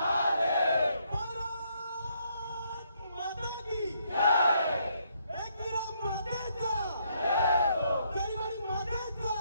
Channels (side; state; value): both; inverted; correlation -0.72